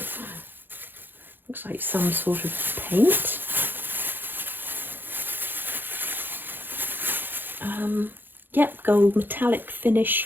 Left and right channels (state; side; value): late; left; 0.095 ms